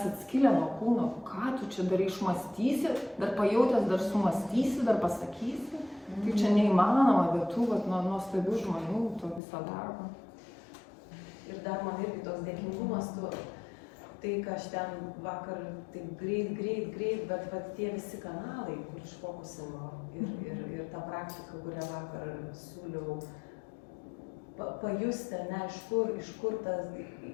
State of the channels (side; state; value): right; drops out; at 9.4 s